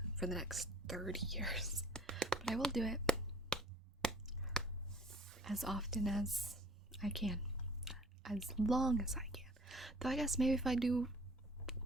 for the next 30 years. But I will do it as often as I can. As long as I can. Though I guess maybe if I do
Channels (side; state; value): both; normal; correlation 0.53